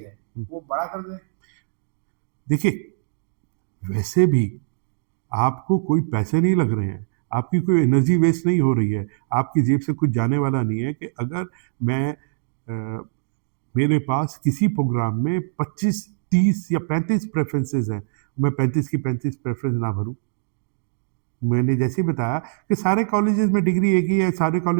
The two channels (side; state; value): left; silent; digital silence